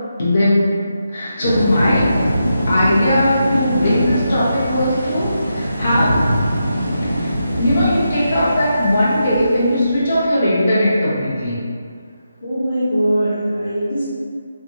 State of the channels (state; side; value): inverted; both; correlation -0.85